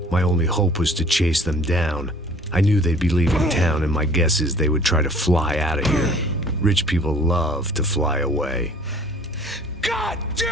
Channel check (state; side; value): normal; both; correlation 0.52